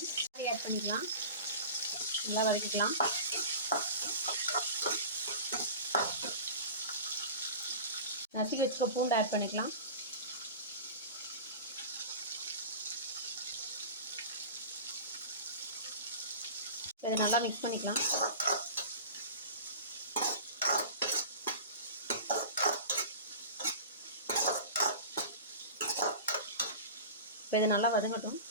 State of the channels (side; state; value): both; inverted; correlation -0.35